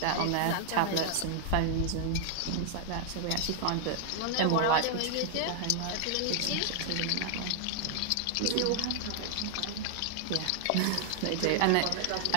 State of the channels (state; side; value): different; both; correlation 0.00